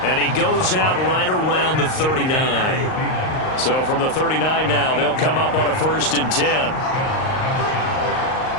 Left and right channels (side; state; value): right; late; 38 ms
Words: And he goes out right around the 39. So from the 39 now, they'll come up on a 1st and 10.